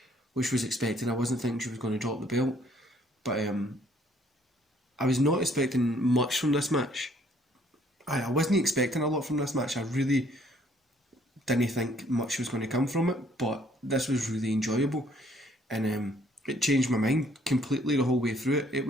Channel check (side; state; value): both; normal; correlation 0.63